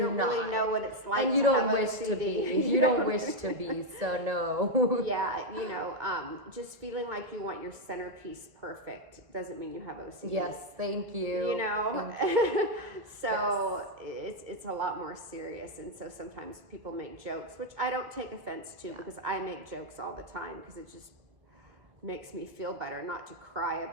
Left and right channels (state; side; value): late; left; 1.9 ms